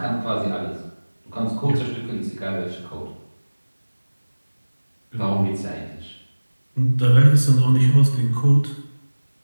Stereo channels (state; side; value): inverted; both; correlation -1.00